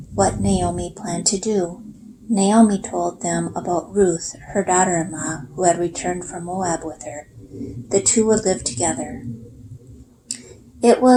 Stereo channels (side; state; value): both; identical; correlation 1.00